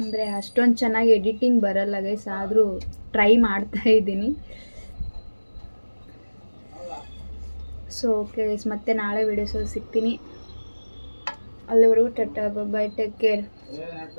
ಅಷ್ಟೊಂದು ಚೆನ್ನಾಗಿ ಎಡಿಟಿಂಗ್ ಬರಲ್ಲ ಗೈಸ್, ಆದರೂ ಟ್ರೈ ಮಾಡ್ತಾ ಇದ್ದೀನಿ. ಸೊ ಓಕೆ ಗೈಸ್, ಮತ್ತೆ ನಾಳೆ ವೀಡಿಯೋಸಲ್ಲಿ ಸಿಗ್ತೀನಿ. ಅಲ್ಲಿವರೆಗೂ ಟಟಾ ಬೈ ಟೇಕ್ ಕೇರ್.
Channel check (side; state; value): both; inverted; correlation -1.00